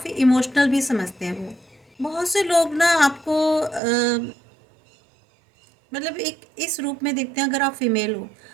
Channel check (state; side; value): drops out; left; at 3.8 s